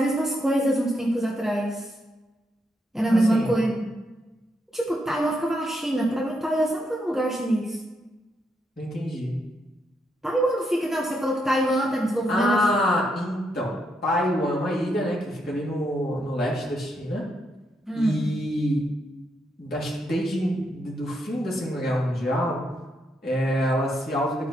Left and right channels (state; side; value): normal; both; correlation 0.79